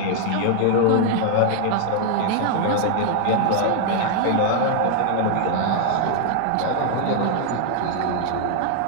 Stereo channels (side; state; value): both; different; correlation 0.00